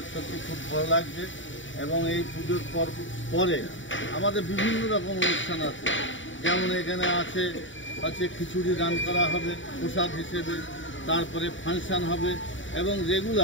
সত্যি খুব ভালো লাগছে। এবং এই পুজোর পরে আমাদের বিভিন্ন রকম অনুষ্ঠান আছে, যেমন এখানে আছে খিচুড়ি দান করা হবে প্রসাদ হিসেবে, তারপরে ফাংশন হবে এবং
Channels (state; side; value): late; right; 0.55 ms